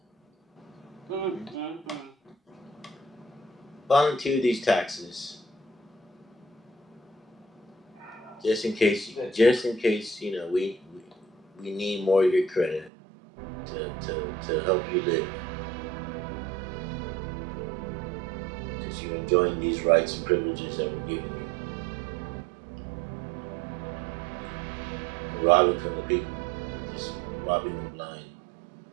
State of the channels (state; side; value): drops out; left; at 12.9 s